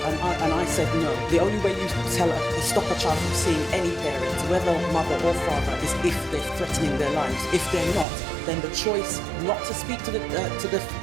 and I said no. The only way you stop a child from seeing any parent, whether mother or father, is if they're threatening their lives. If they're not, then the choice not to speak to the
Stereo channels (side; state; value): left; drops out; at 8.1 s